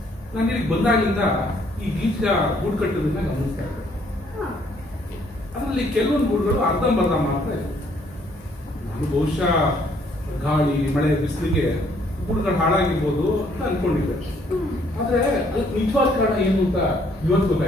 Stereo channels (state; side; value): normal; both; correlation 0.65